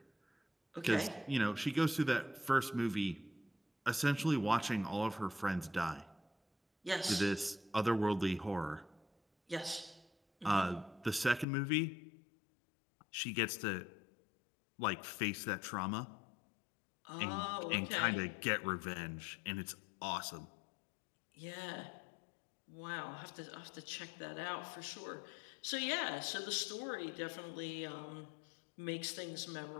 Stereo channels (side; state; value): right; drops out; at 11.5 s